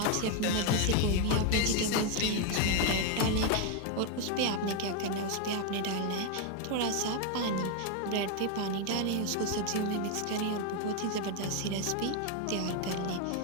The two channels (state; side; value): different; both; correlation 0.01